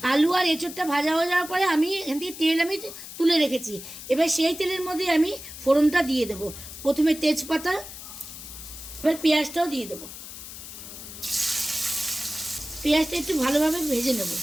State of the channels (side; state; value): left; noise; hiss, 12 dB below the sound